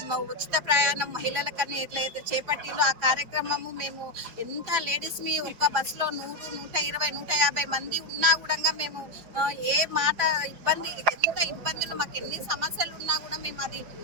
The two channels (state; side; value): late; left; 5.0 ms